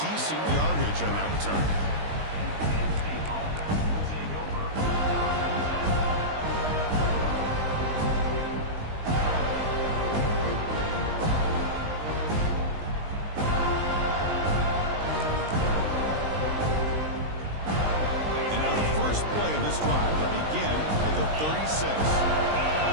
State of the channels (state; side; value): late; left; 19 ms